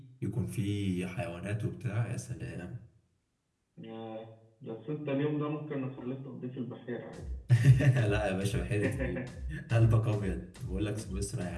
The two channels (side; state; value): both; identical; correlation 1.00